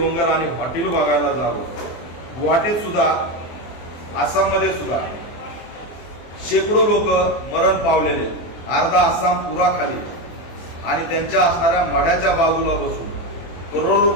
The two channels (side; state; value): right; late; 24 ms